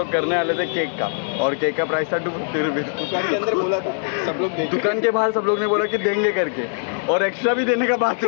करने वाले थे केक का और केक का प्राइस था 250 रुपीज दुकान के अंदर बोला था सब लोग दुकान के बाहर सब लोग ने बोला कि देंगे करके और एक्स्ट्रा भी देने का बात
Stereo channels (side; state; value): right; silent; digital silence